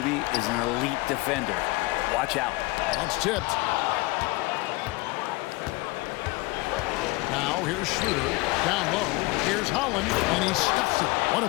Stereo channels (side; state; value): right; quieter; 22.9 dB